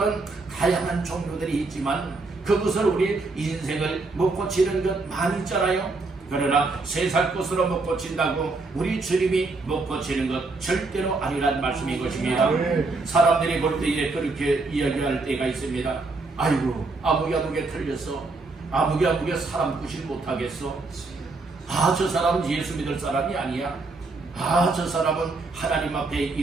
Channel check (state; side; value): quieter; left; 3.6 dB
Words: 다양한 종류들이 있지만 그것을 우리 인생을 못 고치는 것 많이 있잖아요. 그러나 세상 것으로 못 고친다고 우리 주님이 못 고치는 것 절대로 아니란 말씀인 것입니다. 사람들이 볼 때에 그렇게 이야기할 때가 있습니다. 아이고 아무개 틀렸어. 아무개 사람 구실 못하겠어. 저 사람은 예수 믿을 사람이 아니야. 저 사람은 하나님 앞에